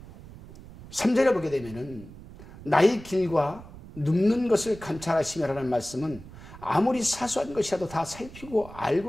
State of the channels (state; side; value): noise; right; rumble, 17 dB below the sound